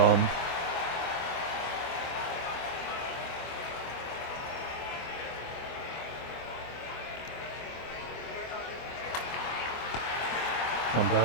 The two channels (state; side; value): late; right; 25 ms